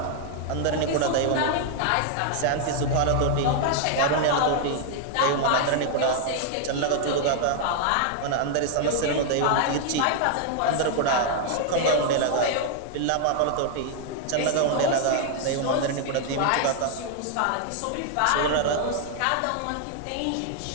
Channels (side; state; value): both; different; correlation 0.00